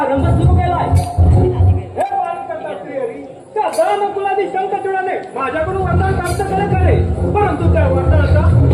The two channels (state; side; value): identical; both; correlation 1.00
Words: सुरू केलाय. हे पालकर्ता श्रीहरी, त्या दानकुलादी शंकरचूडाने माझ्याकडून वरदान प्राप्त करे, परंतु त्या वरदानाचा